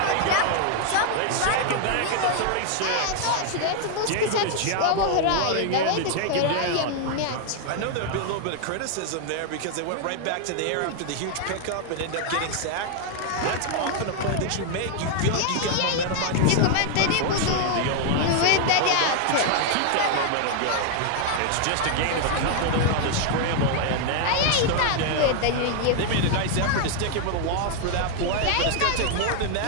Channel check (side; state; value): both; different; correlation 0.00